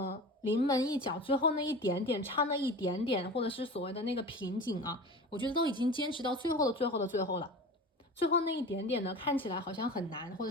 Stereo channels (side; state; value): both; normal; correlation 0.34